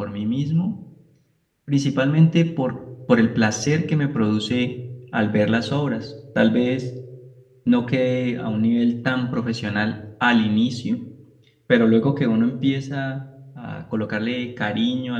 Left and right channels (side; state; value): both; identical; correlation 1.00